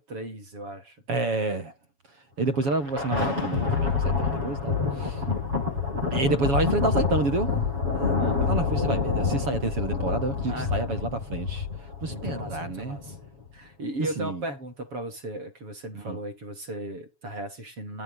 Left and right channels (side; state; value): left; late; 7.2 ms